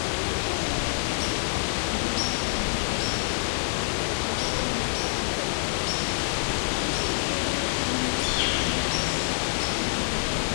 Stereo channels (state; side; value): silent; right; digital silence